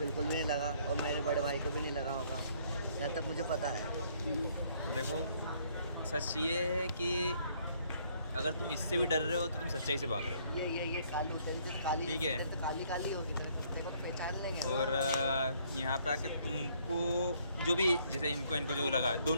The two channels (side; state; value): both; inverted; correlation -0.65